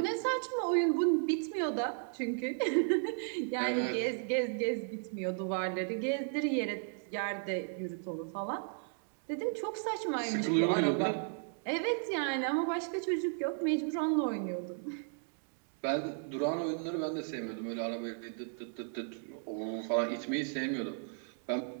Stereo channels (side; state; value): left; silent; 55 dB below the other